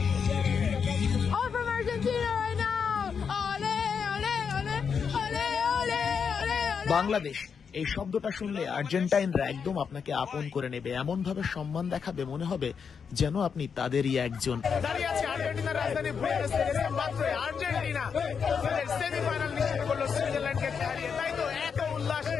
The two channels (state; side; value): quieter; right; 6.4 dB